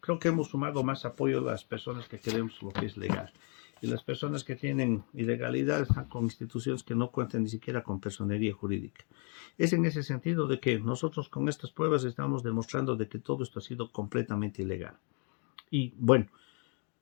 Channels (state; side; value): quieter; right; 37.7 dB